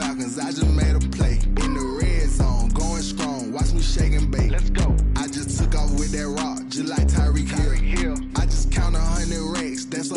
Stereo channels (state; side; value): identical; both; correlation 1.00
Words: I just made a play. In the red zone, going strong, watch me shake and bake. Let's go. I just took off with that rock, just like Tyreek Hill. I just count 100 racks, that's